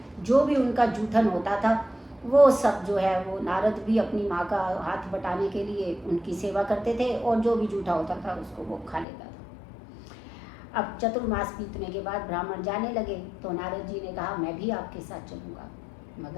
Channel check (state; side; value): drops out; right; at 9.1 s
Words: जो भी उनका जूठन होता था वो सब जो है वो नारद भी अपनी माँ का हाथ बटाने के लिए उनकी सेवा करते थे और जो भी जूठा होता था उसको वो खा लेता था। अब चतुर्मास बीतने के बाद ब्राह्मण जाने लगे तो नारद जी ने कहा मैं भी आपके साथ चलूँगा,